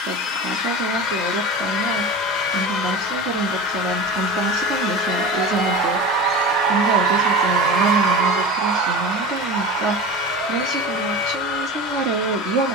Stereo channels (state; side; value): normal; both; correlation 0.31